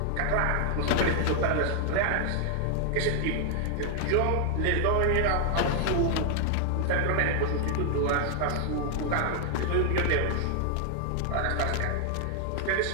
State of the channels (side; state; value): both; different; correlation 0.00